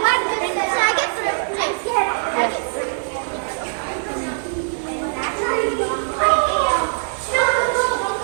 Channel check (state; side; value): silent; left; digital silence